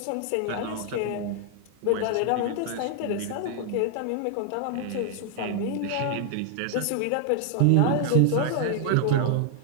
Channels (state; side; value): different; both; correlation 0.00